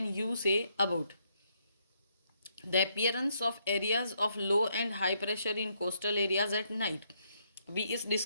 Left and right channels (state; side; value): inverted; both; correlation -0.74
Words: you say about the appearance of areas of low and high pressure in coastal areas at night. अभी इस